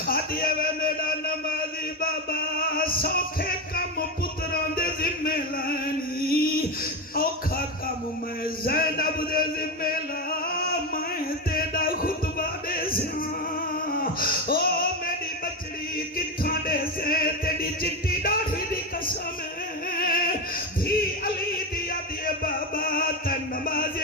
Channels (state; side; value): normal; both; correlation 0.14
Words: آدھیے وے میرا نمازی بابا سوکھے کم پتران دے ذمہ لانی اوکھا کم میں زینب دے ذمہ لا میں تیرا خطبہ دے سیاں او میری بچڑی کتھاں دے سے تیری چٹی ڈاڑھی دی قسم ہے بھی علی دیا دیے بابا تن